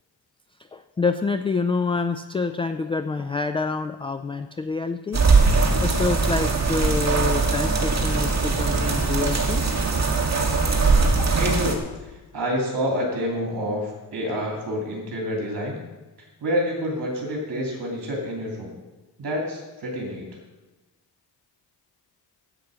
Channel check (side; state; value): both; normal; correlation 0.48